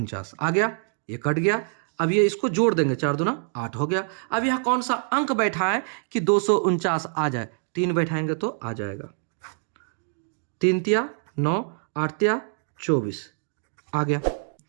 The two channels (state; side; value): silent; left; 61 dB below the other